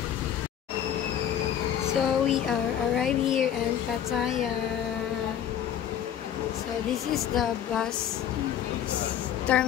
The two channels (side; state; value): right; quieter; 9.8 dB